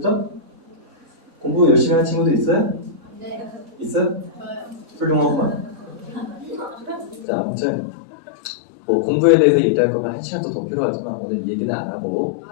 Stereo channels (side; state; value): right; drops out; at 7.2 s